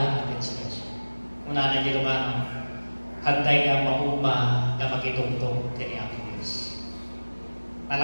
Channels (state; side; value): inverted; both; correlation -1.00